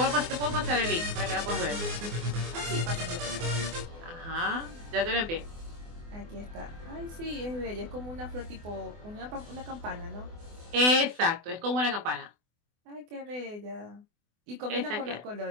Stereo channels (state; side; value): late; left; 24 ms